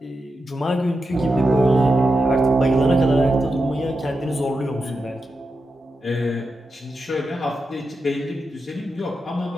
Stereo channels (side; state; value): both; normal; correlation 0.89